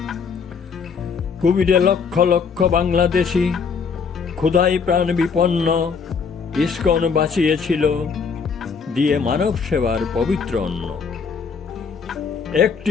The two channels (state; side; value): quieter; right; 5.8 dB